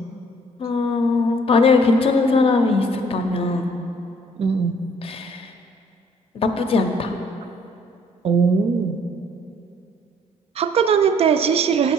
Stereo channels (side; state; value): both; normal; correlation 0.59